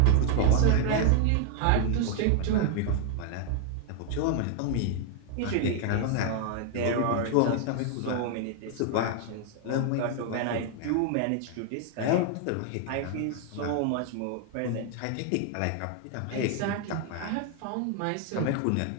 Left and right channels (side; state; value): both; different; correlation 0.00